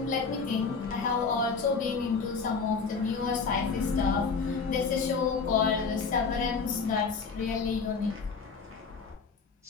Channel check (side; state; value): right; quieter; 5.0 dB